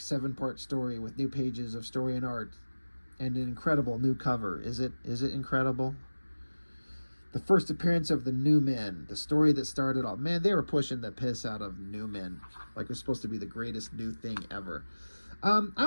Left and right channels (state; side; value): inverted; both; correlation -1.00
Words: story with new pages of story and art and an incredible new cover. Is it incredible? The first appearance of the New Men, the story that started all. Man, they were pushing the piss out of New Men like it was supposed to be the greatest new thing ever. I'm